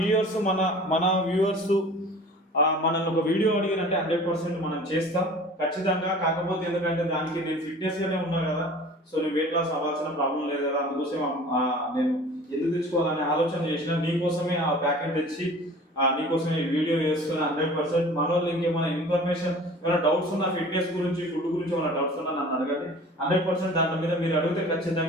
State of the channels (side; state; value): both; normal; correlation 0.44